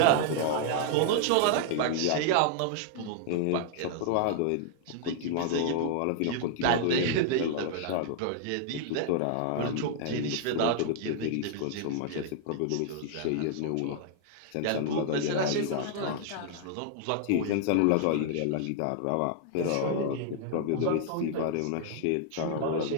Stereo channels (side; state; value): both; different; correlation -0.01